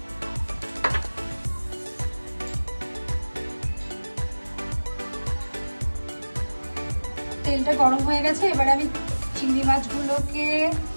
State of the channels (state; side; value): inverted; both; correlation -1.00